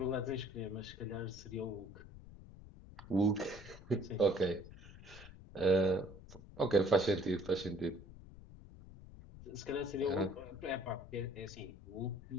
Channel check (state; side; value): noise; left; rumble, 17 dB below the sound